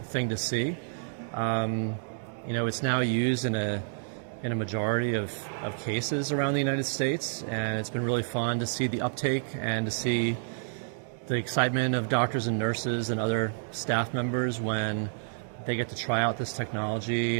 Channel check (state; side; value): silent; left; digital silence